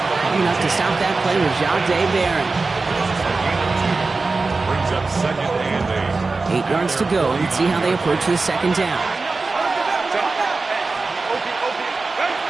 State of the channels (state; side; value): quieter; left; 3.8 dB